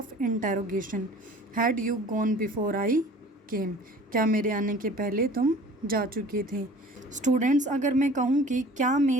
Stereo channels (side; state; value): both; normal; correlation 0.46